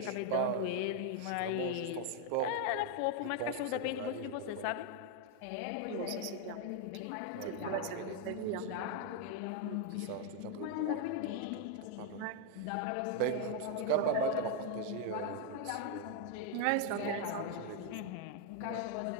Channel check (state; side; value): different; both; correlation 0.01